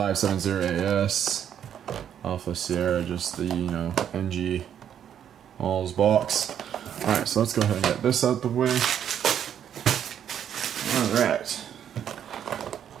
Alpha Sierra, just the, you know, NG All's box. Alright, so let's go ahead and get this out the way. Alright.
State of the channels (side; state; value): left; quieter; 9.3 dB